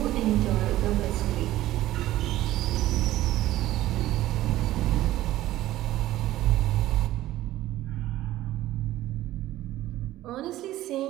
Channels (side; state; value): left; quieter; 15.0 dB